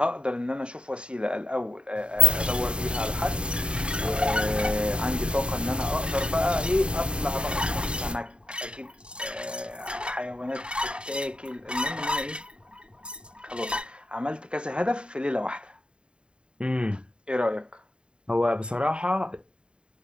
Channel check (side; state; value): left; late; 0.053 ms